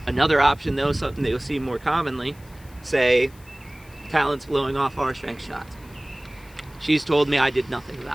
Another option though, something that you'll see more commonly, say Talon's blowing off our strength shots. She's told me I did nothing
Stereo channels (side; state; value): left; noise; hiss, 26 dB below the sound